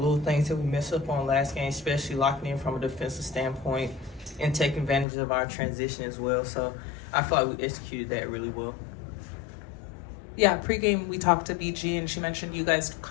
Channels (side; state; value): right; drops out; at 5.1 s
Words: things that we messed up on last game, especially locking in from a defensive standpoint and taking advantage of our transition as well. So I feel like we executed that really well. Yeah, pregame we talked to BG and she mentioned you guys